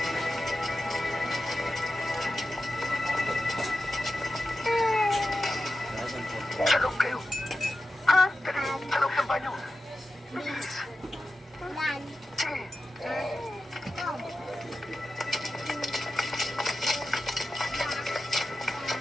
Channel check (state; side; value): normal; both; correlation 0.92